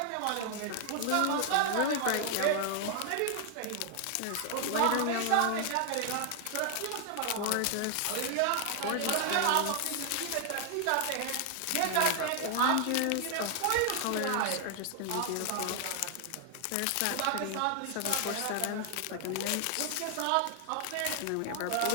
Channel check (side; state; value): both; different; correlation 0.00